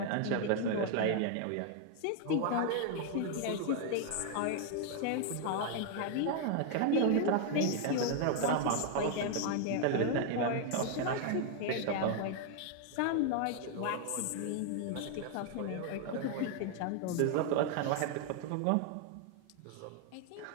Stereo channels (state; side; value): different; both; correlation 0.00